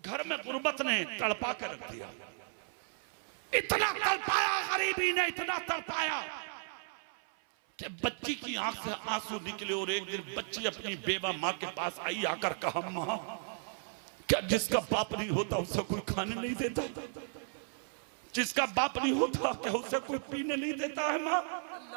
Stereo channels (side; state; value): left; silent; 55 dB below the other